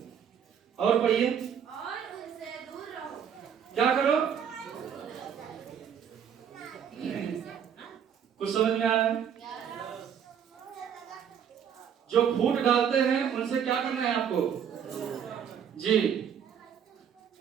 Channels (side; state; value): left; quieter; 8.2 dB